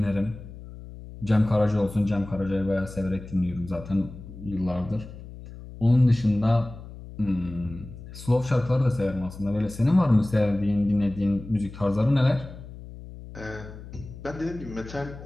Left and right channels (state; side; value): noise; left; hum, 15 dB below the sound